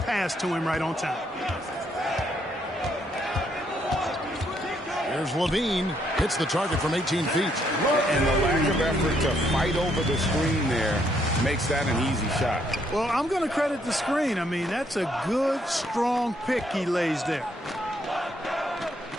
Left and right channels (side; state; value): both; normal; correlation 0.72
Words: to him right on time. Here's Levine. Hits the target from 18 feet. And the lack of effort to fight over the screen there makes that an easy shot. Well, I'm going to credit the screen. I mean, that's a good, strong pick he lays there.